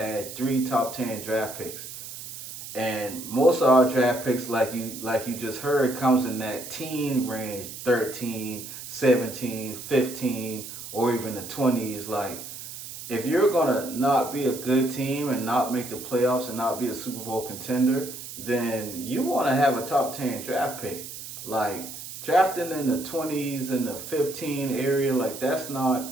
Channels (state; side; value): noise; right; hiss, 11 dB below the sound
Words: 3 top 10 draft picks. And most of our draft picks, like you just heard, comes in that teen range, 13, 17, 15, or even the 20s. Like, if you're going to not be a good team and not make the playoffs and not be a Super Bowl contender, then you want to have a top 10 draft pick. Like, drafting in the 20s and the 15 area, like, that's